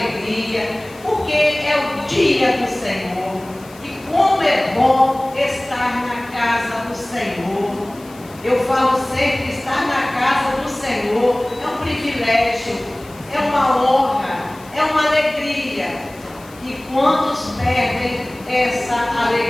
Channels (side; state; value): left; noise; hiss, 23 dB below the sound